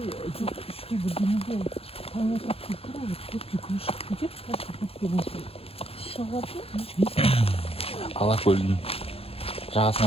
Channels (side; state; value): right; late; 0.28 ms